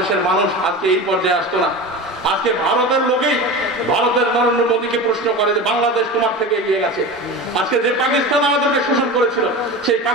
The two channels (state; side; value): normal; both; correlation 0.29